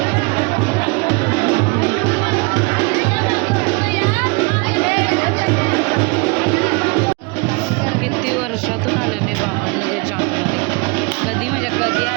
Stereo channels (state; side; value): quieter; left; 29.6 dB